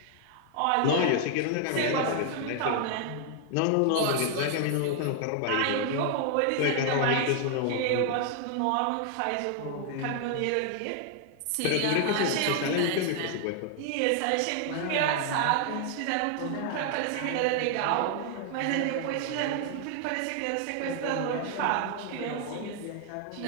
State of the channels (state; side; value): different; both; correlation 0.00